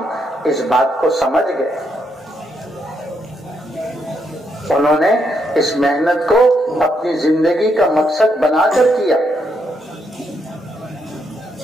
اس بات کو سمجھ گئے، انہوں نے اس محنت کو اپنی زندگی کا مقصد بنا کر کیا.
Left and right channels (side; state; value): both; normal; correlation 0.77